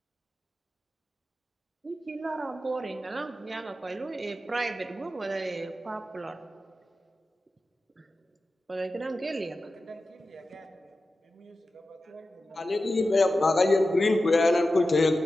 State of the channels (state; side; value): normal; both; correlation 0.93